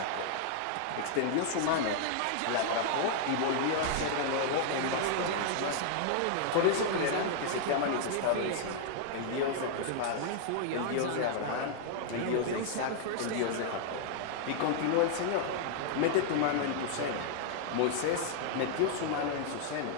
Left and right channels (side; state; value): both; different; correlation 0.00